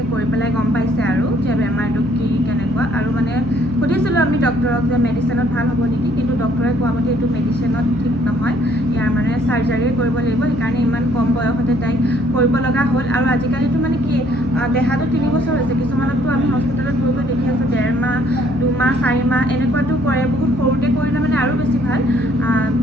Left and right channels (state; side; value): noise; left; hum, 12 dB below the sound